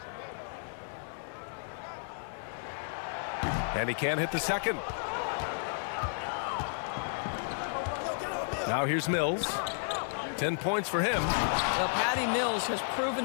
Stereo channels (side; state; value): right; silent; 56 dB below the other